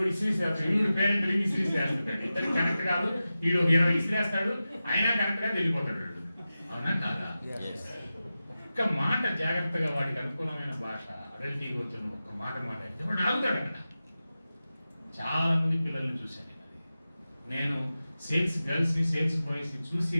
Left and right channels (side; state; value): both; inverted; correlation -0.94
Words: ఇసిరేస్తాడు, ఈడు పేరెంట్ ఇసిరేస్తాడు. ఇద్దరు కరెక్ట్ కాదు, ఈడు 20 ఇసిరేస్తాడు, అయినా కరెక్ట్ గా వెళ్ళిపోతాడు. అవునా కాదా? ఒక్క మాట జాగ్రత్తగా వాడికి అనుకూలమైన భాష అడల్ట్ ఈగోతో ఒక్క మాట మాట్లాడితే వాడు ఆగుతాడు. అక్కడ చాలా మంది పిల్లల్ని చూశాను నేను సేల్స్ గర్ల్స్ ని, సేల్స్ బాయ్స్ ని చూసి